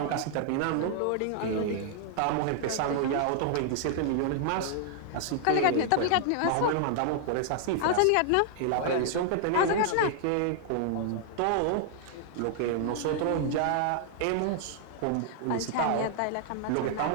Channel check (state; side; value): different; both; correlation -0.01